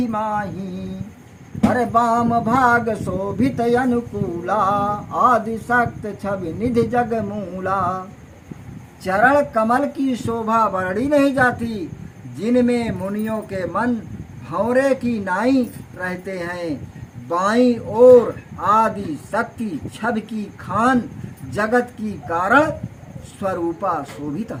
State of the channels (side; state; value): both; identical; correlation 1.00